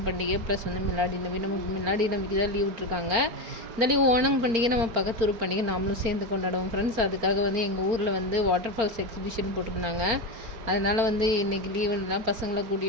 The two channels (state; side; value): late; left; 4.4 ms